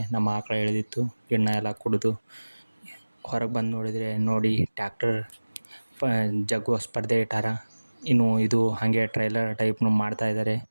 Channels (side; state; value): both; inverted; correlation -1.00